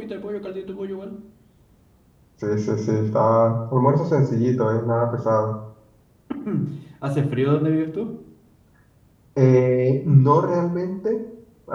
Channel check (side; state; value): both; identical; correlation 1.00